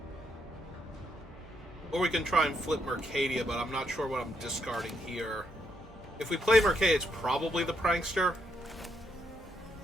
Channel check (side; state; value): both; normal; correlation 0.77